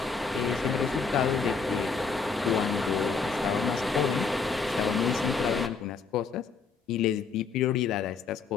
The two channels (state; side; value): quieter; right; 5.1 dB